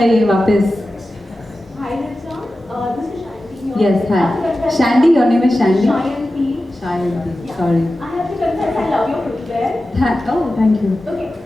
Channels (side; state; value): both; normal; correlation 0.94